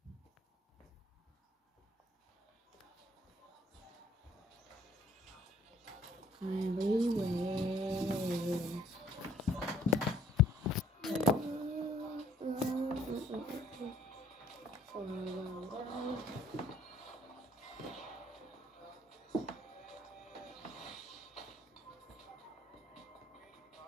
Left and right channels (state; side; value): normal; both; correlation 0.60